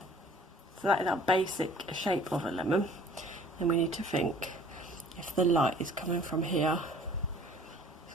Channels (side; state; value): both; normal; correlation 0.51